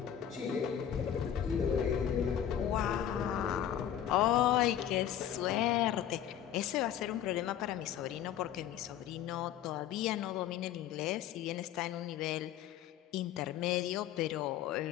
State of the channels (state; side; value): quieter; right; 10.4 dB